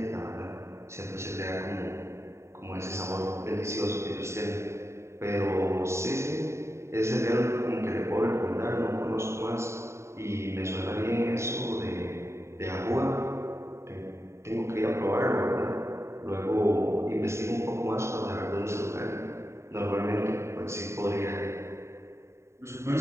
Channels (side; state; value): left; late; 0.13 ms